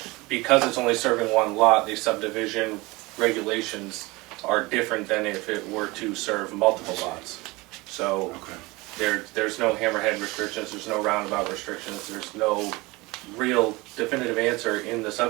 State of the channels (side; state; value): left; quieter; 23.0 dB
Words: because it's only serving one lot, the subdivision regulations are different than if it were to serve multiple lots. So there's no hammerhead restrictions, there's no roundabout restrictions, there's no real definitive answer in the